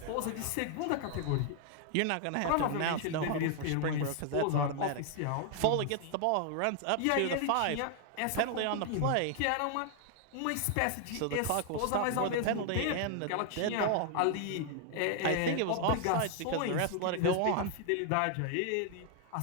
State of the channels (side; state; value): both; different; correlation 0.00